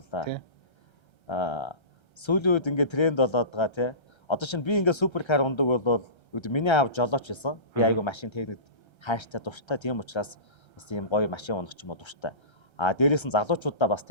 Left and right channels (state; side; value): late; right; 1.3 ms